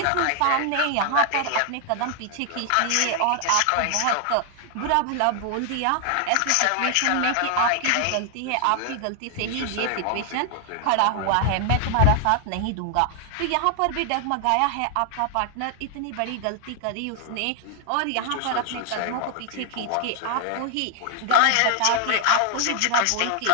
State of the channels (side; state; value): both; different; correlation 0.00